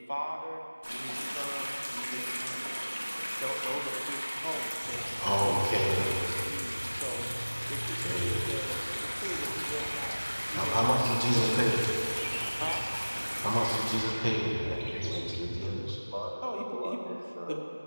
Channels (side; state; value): both; inverted; correlation -1.00